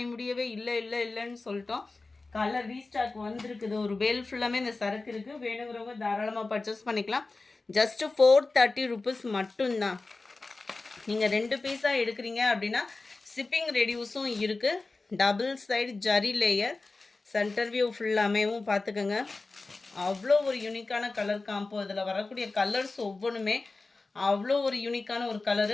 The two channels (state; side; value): quieter; right; 3.6 dB